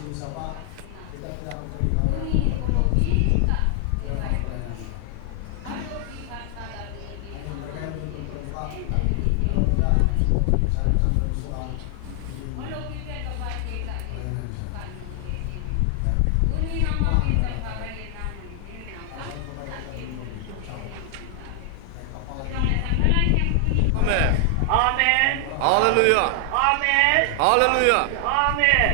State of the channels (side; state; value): both; different; correlation 0.00